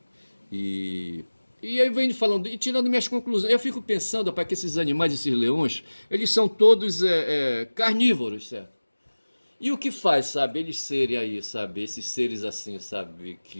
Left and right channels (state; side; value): inverted; both; correlation -1.00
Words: E, e aí vem falando, e tirando minhas conclusões, eu fico pensando, rapaz, que esses animais, esses leões, eles são todos carnívoros, certo? E o que faz, sabe, eles serem aí, sabe, esses seres assim, sabe,